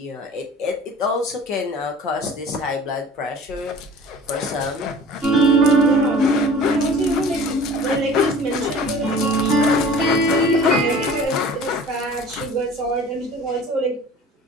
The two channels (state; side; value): normal; both; correlation 0.44